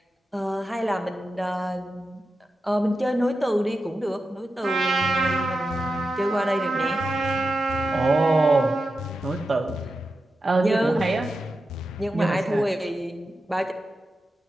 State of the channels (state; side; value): normal; both; correlation 0.91